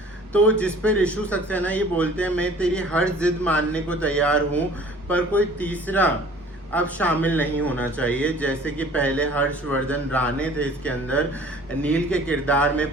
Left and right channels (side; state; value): both; normal; correlation 0.49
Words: तो जिस पे रिशु सक्सेना ये बोलते हैं, मैं तेरी हर जिद मानने को तैयार हूँ, पर कोई तीसरा अब शामिल नहीं होना चाहिए। जैसे कि पहले हर्षवर्धन राणे थे इसके अंदर, नील के किरदार में